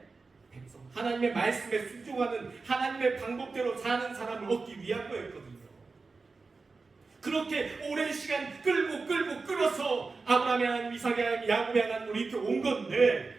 백성, 하나님의 말씀에 순종하는 하나님의 방법대로 사는 사람을 얻기 위한 거였거든요. 그렇게 오랜 시간 끌어서 아브라함의 하나님, 이삭의 하나님, 야곱의 하나님으로 이렇게 온 건데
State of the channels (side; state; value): left; quieter; 4.1 dB